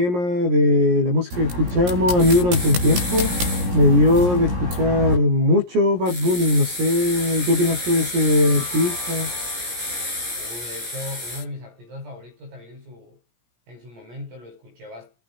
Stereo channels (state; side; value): late; left; 17 ms